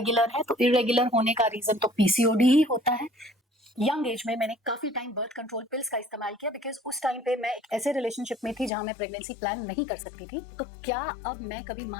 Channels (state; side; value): drops out; right; at 8.7 s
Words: है, तो इरेगुलर होने का रीजन तो पीसीओडी ही होता है। यंग एज में मैंने काफी टाइम बर्थ कंट्रोल पिल्स का इस्तेमाल किया, बिकॉज उस टाइम पे मैं एक ऐसे रिलेशनशिप में थी जहां मैं प्रेगनेंसी प्लान नहीं कर सकती थी। तो क्या अब मैं कभी